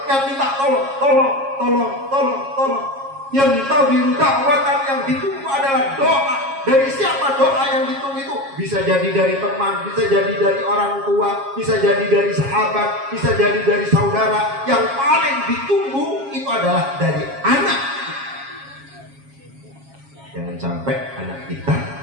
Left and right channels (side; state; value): left; late; 7.3 ms